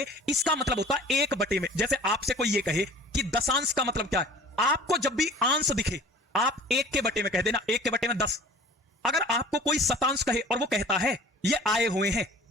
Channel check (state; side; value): normal; both; correlation 0.45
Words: इसका मतलब होता है 1/। में जैसे आपसे कोई ये कहे कि दशांश का मतलब क्या है, आपको जब भी अंश दिखे आप 1/, में कह देना, 1/, में 10। अगर आपको कोई शतांश कहे और वो कहता है ये आए हुए हैं,